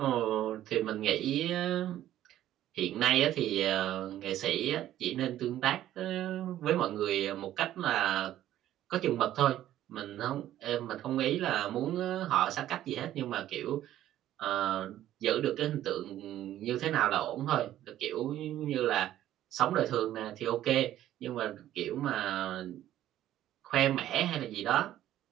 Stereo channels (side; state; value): left; quieter; 12.8 dB